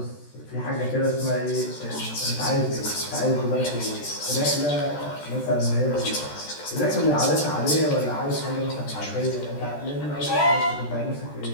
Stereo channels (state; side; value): late; right; 14 ms